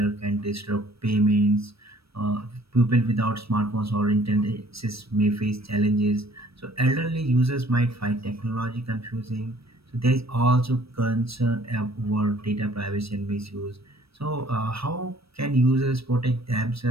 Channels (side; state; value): left; late; 0.77 ms